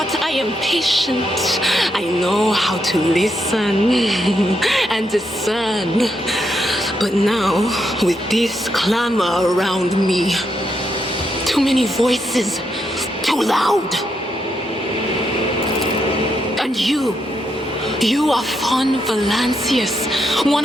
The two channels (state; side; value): normal; both; correlation 0.80